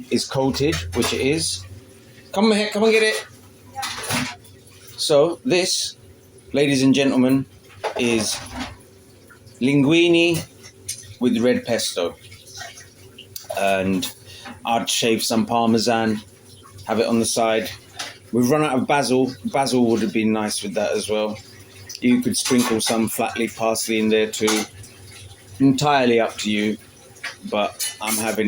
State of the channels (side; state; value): both; identical; correlation 1.00